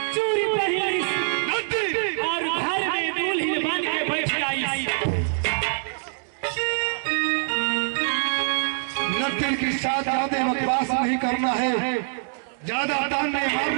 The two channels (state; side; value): silent; left; digital silence